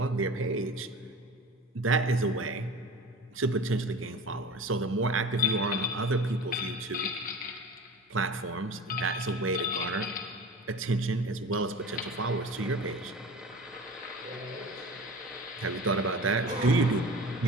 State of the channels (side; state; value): both; normal; correlation 0.36